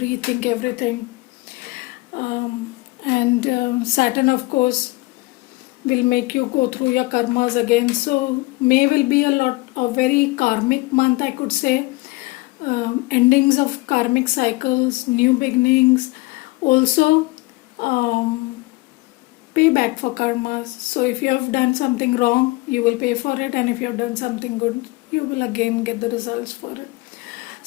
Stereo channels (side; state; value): right; quieter; 22.6 dB